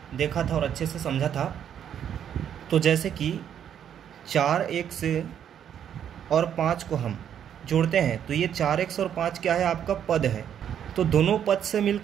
देखा था और अच्छे से समझा था। तो जैसे कि 4x और 5 को हम जोड़ते हैं तो ये 4x और 5 क्या है, आपका पद है। तो दोनों पद से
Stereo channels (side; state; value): left; quieter; 9.2 dB